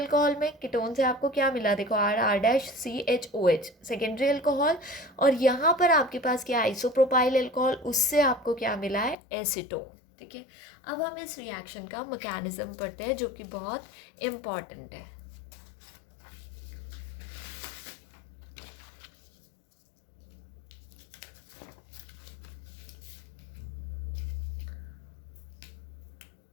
में। कीटोन से आपको क्या मिला, देखो R⁻CHOH सेकेंडरी अल्कोहल, और यहाँ पर आपके पास क्या आइसोप्रोपाइल अल्कोहल, उससे आपको क्या मिला है, एसीटोन। ठीक है, अब हम इस रिएक्शन का मैकेनिज्म पढ़ते हैं जो कि बहुत इम्पॉर्टेंट है।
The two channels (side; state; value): right; drops out; at 9.2 s